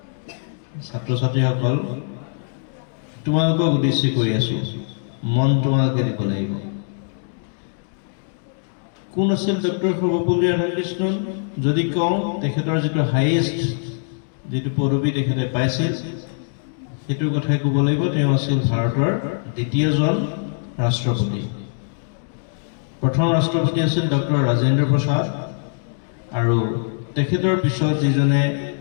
ছাত্ৰ ছাত্ৰীসকল, তোমালোকক উদ্দেশ্য কৰি আছো, মন তোমালোকে দিব লাগিব। কোন আছিল ডক্টৰ সৰ্বপল্লী ৰাধাকৃষ্ণন? যদি কওঁ, তেখেতৰ যিটো হাইয়েষ্ট যিটো পদবী তেখেতে পাইছিল, সেইটোৰ কথাই ক'ব লাগিব। তেওঁ আছিল ভাৰতৰ দ্বিতীয়জন ৰাষ্ট্ৰপতি। প্ৰথম ৰাষ্ট্ৰপতি আছিল ডক্টৰ ৰাজেন্দ্ৰ প্ৰসাদ, আৰু তেখেতৰ পিছত যিজনে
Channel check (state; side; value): silent; right; digital silence